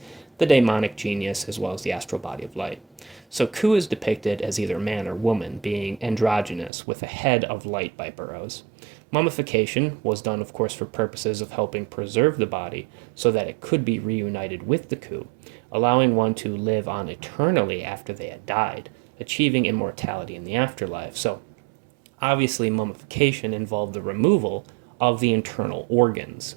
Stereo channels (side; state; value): left; drops out; at 6.7 s